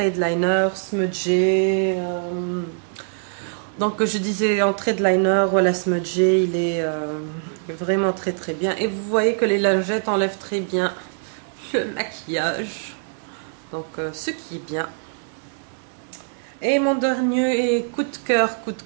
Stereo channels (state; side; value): silent; left; digital silence